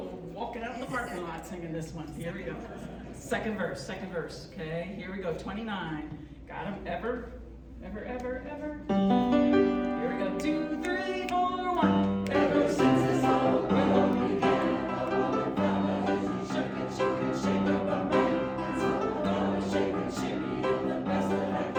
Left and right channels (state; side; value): identical; both; correlation 1.00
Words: walking out in the parking lot singing this one. Here we go. Second verse. Okay, here we go. 29. Got 'em? Ever. Here we go. 2, 3, 4, 1. Ever since this whole world began, I wanna find a shake up a man. So I'm gonna shake and shimmy in the best that I